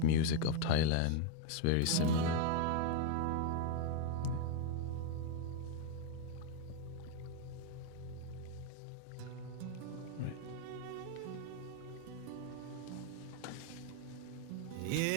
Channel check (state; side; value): different; both; correlation 0.01